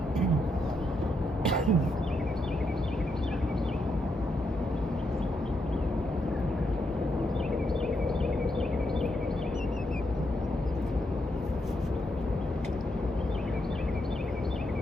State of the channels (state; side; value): normal; both; correlation 0.80